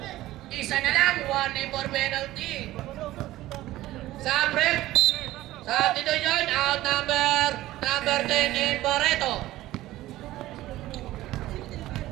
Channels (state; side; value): quieter; left; 16.0 dB